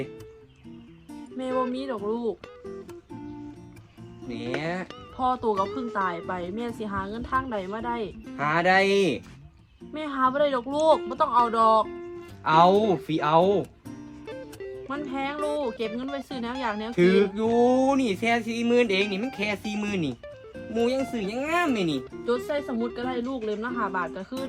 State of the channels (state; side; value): identical; both; correlation 1.00